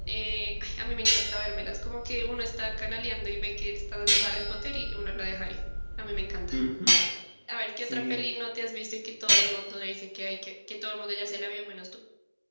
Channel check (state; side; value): inverted; both; correlation -1.00